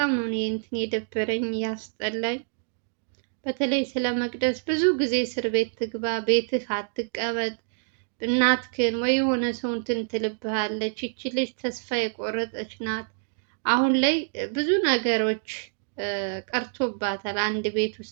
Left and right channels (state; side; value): silent; left; digital silence